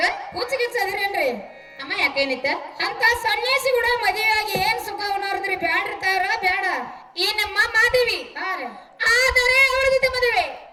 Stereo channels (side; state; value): both; identical; correlation 1.00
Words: ಹುಚ್ಚಿಗಿಚ್ಚದ್ರೇನ್ರಿ? ಅಮ್ಮ ಯಾಕ ಏನಿತ್ತ? ಅಂತ ಸನ್ಯಾಸಿ ಕೂಡ ಮದುವೆಯಾಗಿ ಏನ್ ಸುಖ ಉಣೋರ್ದ್ರಿ? ಬ್ಯಾಡ್ರಿ ತಾಯವ್ರ ಬ್ಯಾಡ. ಏನಮ್ಮ ಮಾದೇವಿ ಹಾ ರೀ. ಆದರೆ ಅವಳ ಜೊತೆ ಮದುವೆ